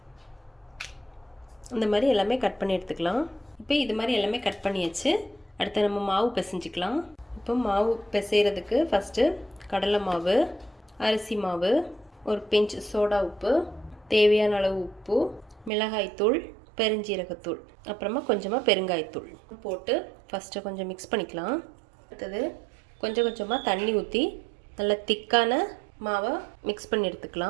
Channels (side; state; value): left; drops out; at 15.7 s